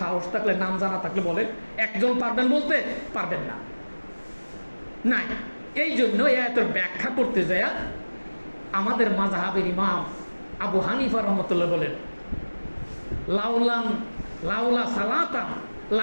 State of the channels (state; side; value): inverted; both; correlation -1.00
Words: সাহস থাকলে, নাম জানা থাকলে বলেন। একজন পারবেন বলতে? পারবেন না, নাই। এই জন্য এই আয়াতের ব্যাখ্যা করতে যায় আমাদের মাযহাবের ইমাম আবু হানিফা রহমতুল্লাহ বলেন, লাউলা সালাতান